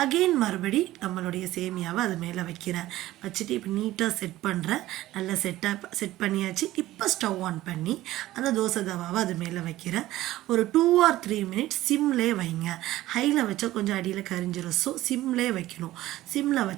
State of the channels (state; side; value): quieter; left; 15.8 dB